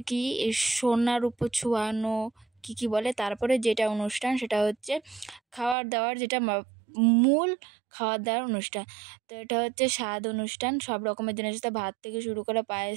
কি সোনার উপর ছোঁয়ানো কী বলে। তারপরে যেটা অনুষ্ঠান সেটা হচ্ছে খাবার দাবার, যেটা মূল খাবার দাবার অনুষ্ঠান। তো এটা হচ্ছে স্বাদ অনুষ্ঠান, সব রকমের জিনিস, ভাত থেকে শুরু করে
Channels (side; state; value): left; drops out; at 5.8 s